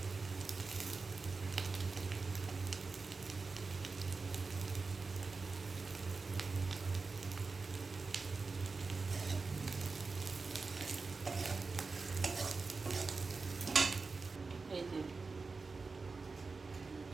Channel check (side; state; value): left; quieter; 4.2 dB